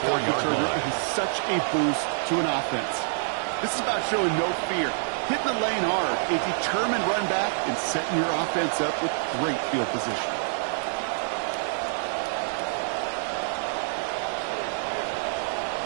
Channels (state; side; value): silent; left; digital silence